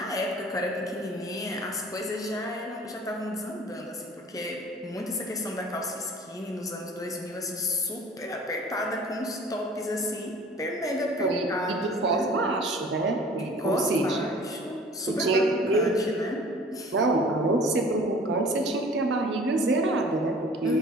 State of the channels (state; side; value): normal; both; correlation 0.48